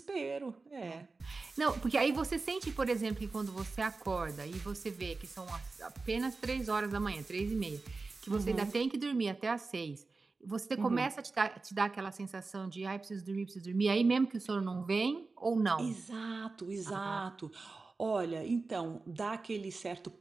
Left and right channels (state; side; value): quieter; left; 3.9 dB